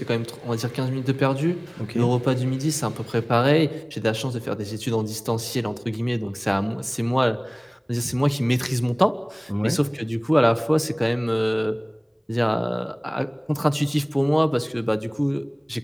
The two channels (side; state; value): both; identical; correlation 1.00